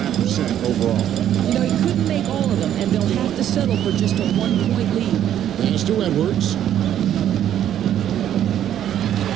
overall. You know, he couldn't make all of them, and they'll have to settle for just a 1-point lead. Pass to Edwards.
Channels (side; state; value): left; quieter; 10.7 dB